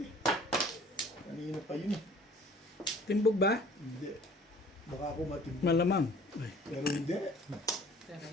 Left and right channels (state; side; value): normal; both; correlation 0.51